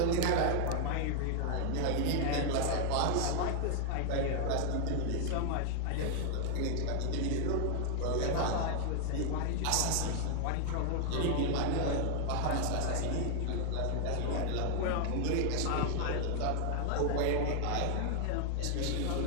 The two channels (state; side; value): different; both; correlation 0.00